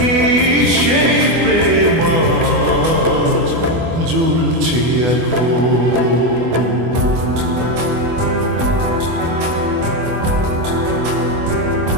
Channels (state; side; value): late; left; 24 ms